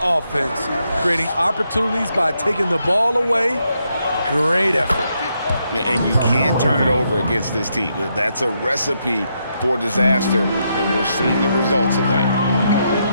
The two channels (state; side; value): inverted; both; correlation -0.79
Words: offense, creating opportunities by taking the ball away. Great effort. And you can't turn it over against this team. That's a recipe for disaster, and we're seeing the results of that.